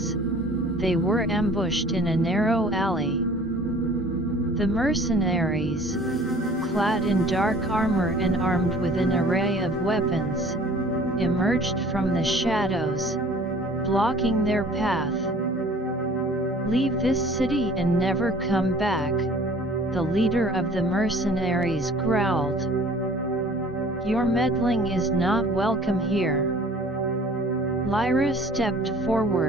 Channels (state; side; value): normal; both; correlation 0.50